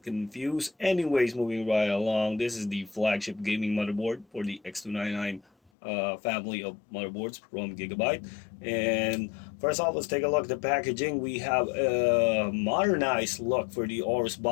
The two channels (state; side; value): drops out; right; at 5.7 s